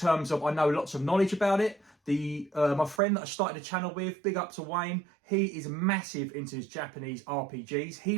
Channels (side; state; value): left; drops out; at 3.0 s